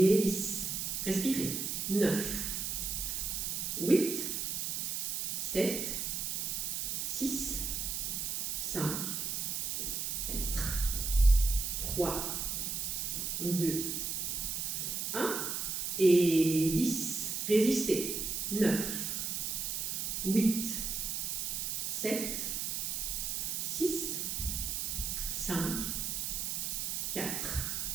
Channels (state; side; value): noise; right; hiss, 1 dB below the sound